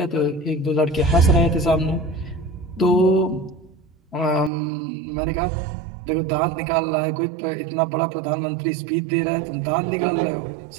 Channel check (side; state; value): left; drops out; at 4.5 s